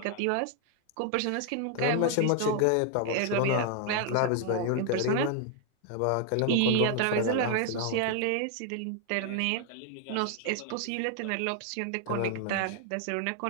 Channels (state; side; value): different; both; correlation 0.00